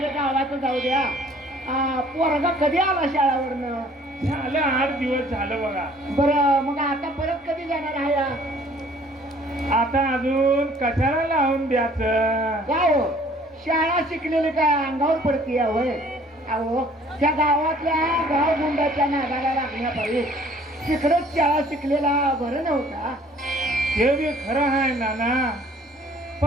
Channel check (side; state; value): both; normal; correlation 0.56